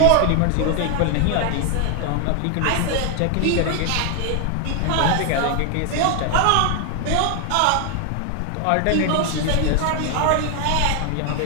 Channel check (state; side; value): different; both; correlation 0.00